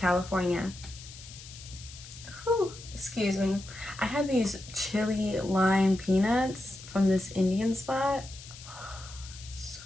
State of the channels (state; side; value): noise; left; hiss, 16 dB below the sound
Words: Whew, excuse me. I had these chili lime peanuts from this Indian spot. So